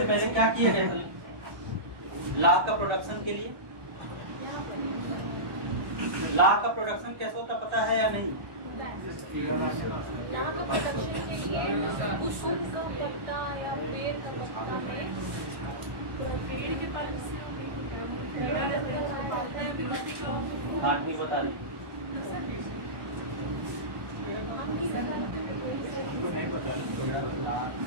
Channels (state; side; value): late; left; 1.2 ms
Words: पहले क्या किया गया था? ला का प्रोडक्शन के लिए, ला का प्रोडक्शन कैसे होता पता है या नहीं? हाँ, नहीं बता रही।